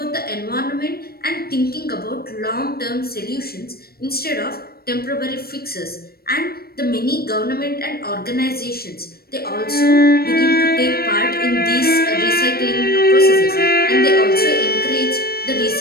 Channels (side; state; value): right; late; 0.45 ms